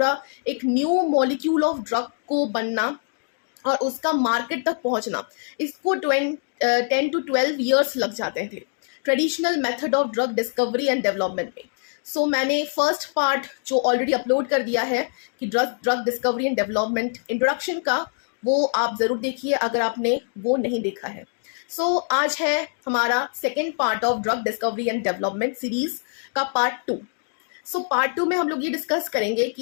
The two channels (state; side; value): silent; right; 63 dB below the other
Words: एक न्यू मॉलिक्यूल ऑफ ड्रग को बनना और उसका मार्केट तक पहुंचना, इसको 10 to 12 ईयर्स लग जाते थे traditional method of drug discovery and development में। मैंने फर्स्ट पार्ट जो ऑलरेडी अपलोड कर दिया है कि drug discovery and development introduction का, वो आप ज़रूर देखिए अगर आपने वो नहीं देखा है। आज है हमारा second part of drug discovery and development series का पार्ट 2। पार्ट 2 में हम लोग ये डिस्कस करेंगे